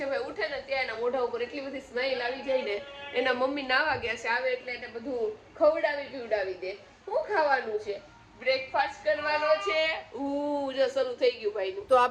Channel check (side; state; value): both; identical; correlation 1.00